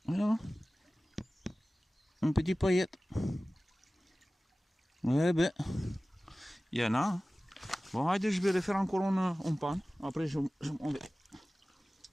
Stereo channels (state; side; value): normal; both; correlation 0.97